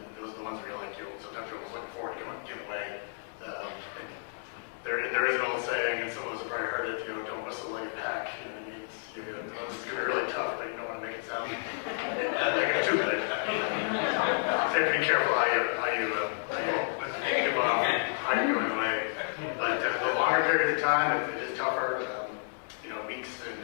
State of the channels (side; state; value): right; silent; digital silence